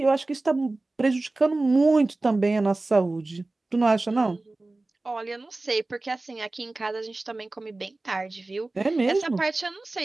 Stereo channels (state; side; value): quieter; left; 3.1 dB